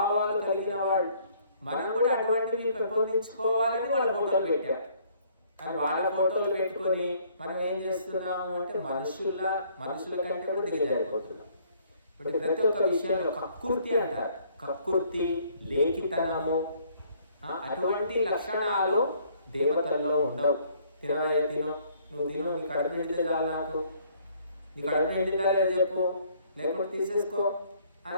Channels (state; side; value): inverted; both; correlation -0.62